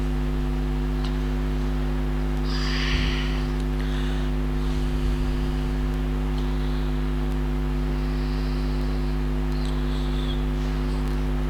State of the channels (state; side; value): identical; both; correlation 1.00